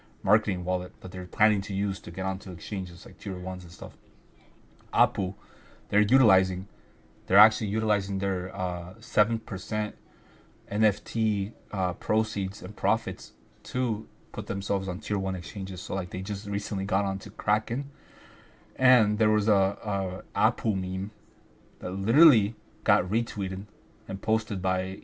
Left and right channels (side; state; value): both; identical; correlation 1.00